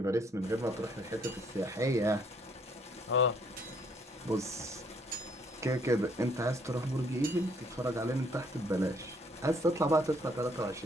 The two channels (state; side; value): normal; both; correlation 0.65